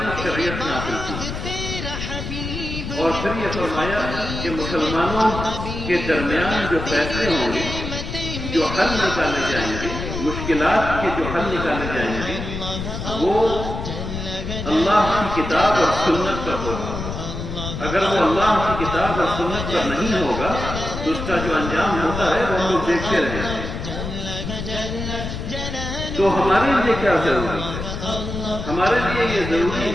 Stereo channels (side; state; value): left; noise; rumble, 6 dB below the sound